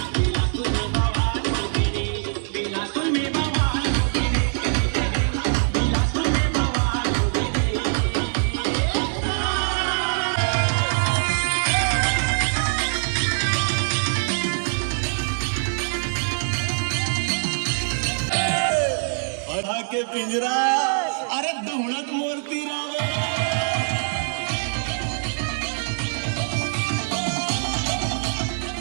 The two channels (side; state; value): left; silent; 63 dB below the other